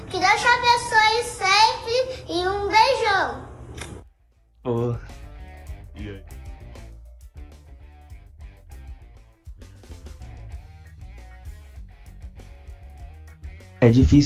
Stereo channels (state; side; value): identical; both; correlation 1.00